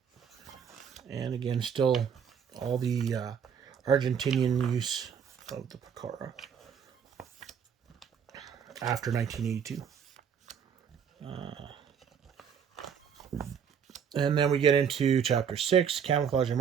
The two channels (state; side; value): quieter; left; 7.5 dB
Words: And again, still all the Argentinian use of the Pucara after 1982. And then we get into Chapter 6, Camouflage and